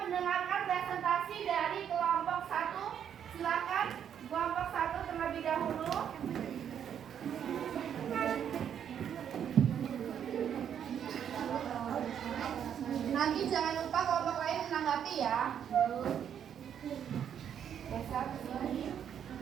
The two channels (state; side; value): quieter; left; 8.9 dB